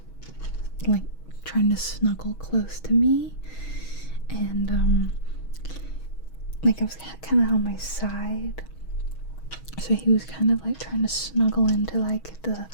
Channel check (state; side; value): late; right; 6.3 ms